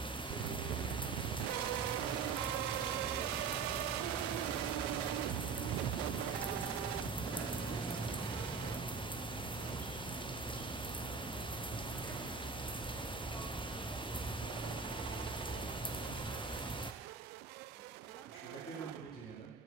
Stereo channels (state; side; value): quieter; left; 5.3 dB